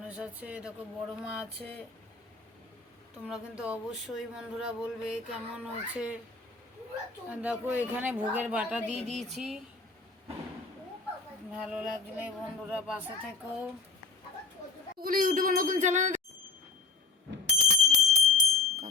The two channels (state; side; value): quieter; right; 4.2 dB